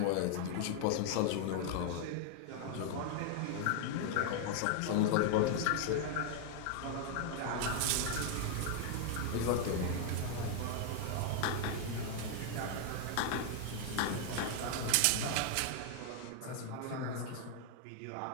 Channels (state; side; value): different; both; correlation 0.00